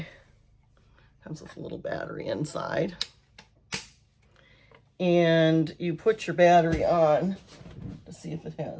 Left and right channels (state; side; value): identical; both; correlation 1.00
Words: Comes with a little battery inside. And you put your battery on to see if it